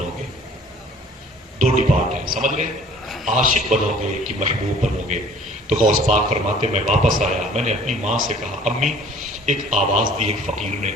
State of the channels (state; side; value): normal; both; correlation 0.51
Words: گے؟ 2 ڈپارٹ ہیں، سمجھ گئے؟ عاشق بنو گے کہ محبوب بنو گے؟ تو غوث پاک فرماتے میں واپس آیا، میں نے اپنی ماں سے کہا امی، ایک آواز دی ایک فقیر نے،